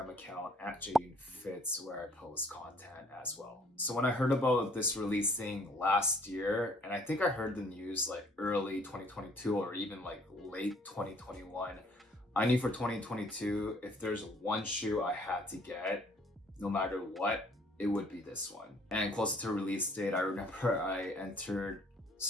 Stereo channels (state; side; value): normal; both; correlation 0.59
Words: account at jaeyoonfits, where I post content as well. So when I heard about this releasing last year, and I think I heard the news like early 2022 or even like late 2021, I knew for 2022, if there's one shoe I had to get, no matter what, it would be this one. And closer to release date, I remember I entered